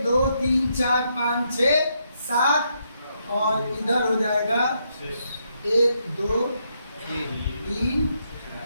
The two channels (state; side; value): inverted; both; correlation -0.78